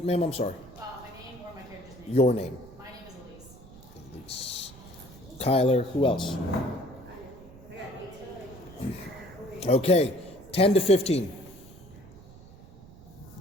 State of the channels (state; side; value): noise; right; rumble, 20 dB below the sound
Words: ma'am? I'm sorry. My name or my character's name? Your name. My name is Elise. Elise. Kyler. Who else? Okay. 10 to 15.